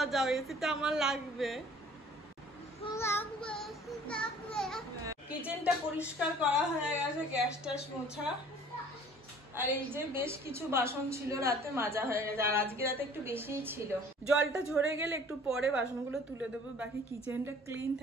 যাও, এসিটা আমার লাগবে। কিচেনটা পরিষ্কার করা হয়ে গেছে, গ্যাস ট্যাস মোছা, আর এই যে বেশ কিছু বাসন ছিল রাতে মাজা হয়ে গেছে, আর আজকে রাতে একটু বেশিই ছিল। জলটা ঝরে গেলে একটু পরে বাসনগুলো তুলে দেবো। বাকি কিচেনটা ক্লিন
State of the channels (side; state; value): both; normal; correlation 0.52